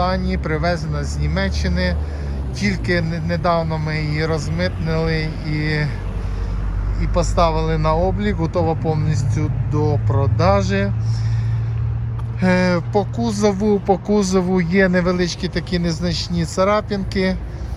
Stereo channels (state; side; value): identical; both; correlation 1.00